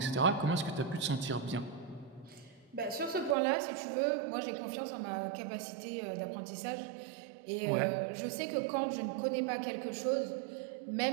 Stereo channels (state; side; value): drops out; left; at 3.4 s